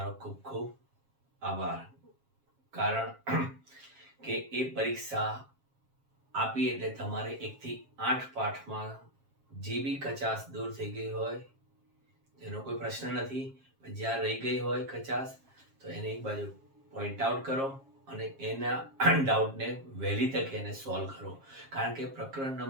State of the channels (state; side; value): late; left; 7.4 ms